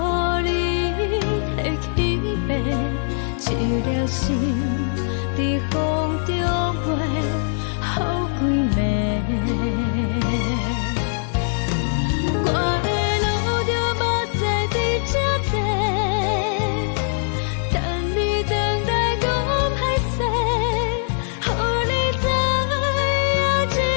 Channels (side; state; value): right; silent; digital silence